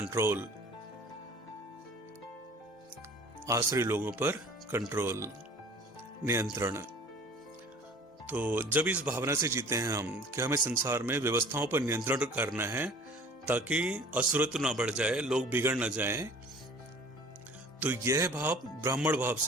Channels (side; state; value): both; normal; correlation 0.47